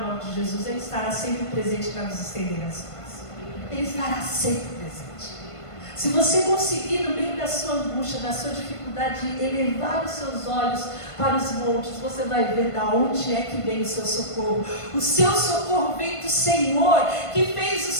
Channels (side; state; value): right; late; 1.5 ms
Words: nome de Jesus, Ele estará sempre presente para nos estender as mãos. Ele estará sempre presente. Se você conseguir, no meio da sua angústia, da sua dificuldade, elevar os seus olhos para os montes, você vai ver de onde é que vem o seu socorro. O seu socorro vem do Senhor, que fez o